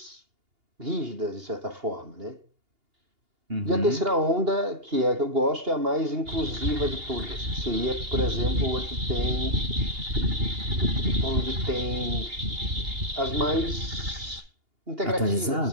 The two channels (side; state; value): left; late; 2.8 ms